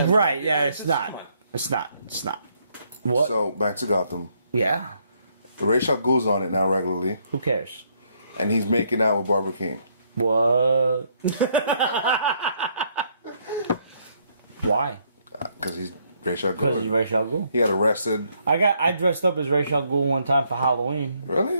Right? Yeah, it's not. Come on. It's not. It's not. What? So back to Gotham. Yeah. Rachel goes on it now regularly, Who cares? and he's making out with Barbara King. What? Why? Because he's Rachel Because he's Gould. Ra's al Ghul. He got arrested. I dressed up as Ra's al Ghul one time for Halloween.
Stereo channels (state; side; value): inverted; both; correlation -0.71